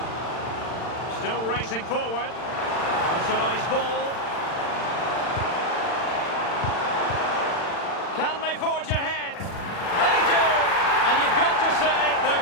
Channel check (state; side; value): late; right; 40 ms